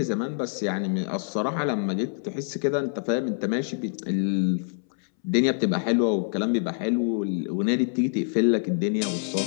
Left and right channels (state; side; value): silent; right; 61 dB below the other